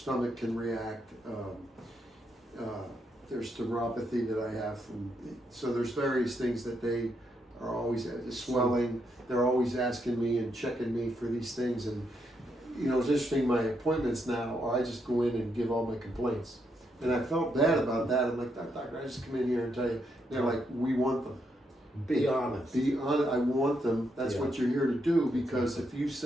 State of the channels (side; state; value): both; normal; correlation 0.79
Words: can react. There's neuropathy that I have so there's various things that they are always swelling. They're always asking me and checking me for these things, and it's interesting. My appointments now are I just go in and give all my complaints, and I felt bad about that. I'm like, doctor, I just come in here and tell you. They're like, we want them. Be honest. Be honest. I want them. That's what you're here to do, because if you